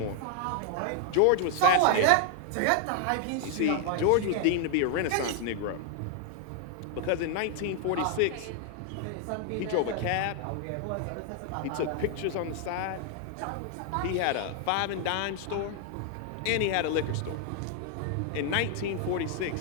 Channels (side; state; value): both; different; correlation 0.00